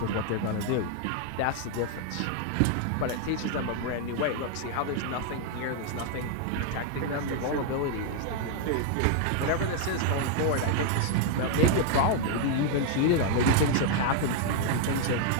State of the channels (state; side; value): different; both; correlation 0.00